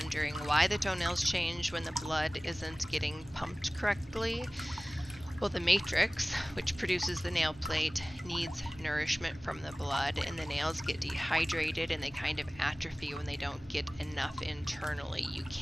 why the toenails change when the blood isn't getting pumped correctly. Well, the matrix, which produces the nail plate, needs nourishment from the blood, and the nails get dehydrated and they kind of atrophy when they don't get enough internally. You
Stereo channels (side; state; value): both; normal; correlation 0.98